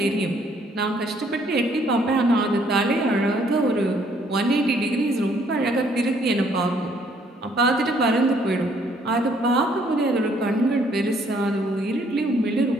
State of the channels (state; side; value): normal; both; correlation 0.65